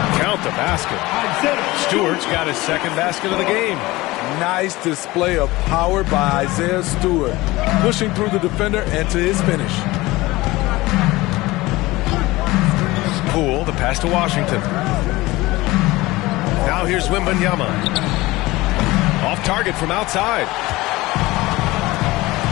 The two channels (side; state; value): right; quieter; 19.9 dB